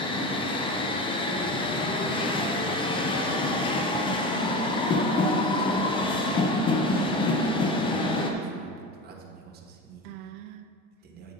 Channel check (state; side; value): normal; both; correlation 0.28